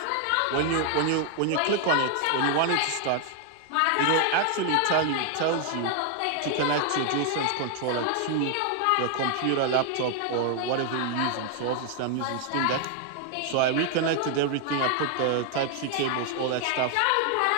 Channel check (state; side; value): different; both; correlation 0.00